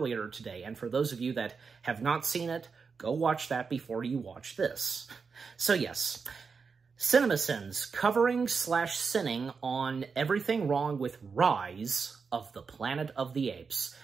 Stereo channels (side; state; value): left; quieter; 5.3 dB